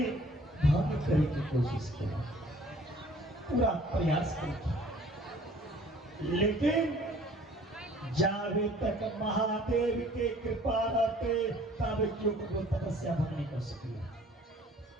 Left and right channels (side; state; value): both; normal; correlation 0.54